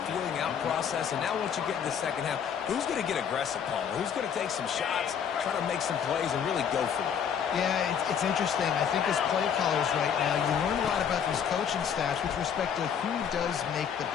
feeling out process. And now once you get in the second half, who's going to get aggressive, Paul? Who's going to take some shots, try to make some plays, and really go for it? Yeah, it's interesting. I think as play callers right now, you learn a lot about these coaching staffs with respect to who does make the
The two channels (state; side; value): quieter; right; 7.8 dB